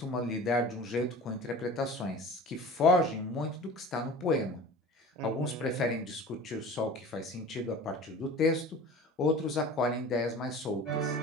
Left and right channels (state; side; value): normal; both; correlation 0.39